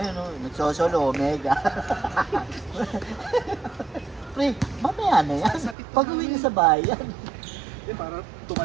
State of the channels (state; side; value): drops out; left; at 5.8 s